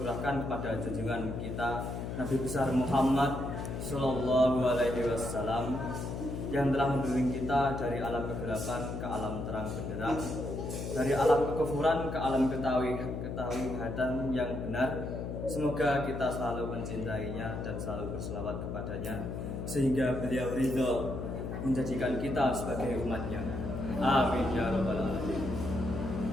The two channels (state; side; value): noise; left; hum, 5 dB below the sound